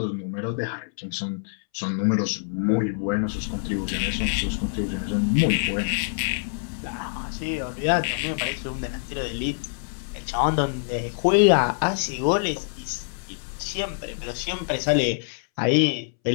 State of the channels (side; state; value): right; silent; 61 dB below the other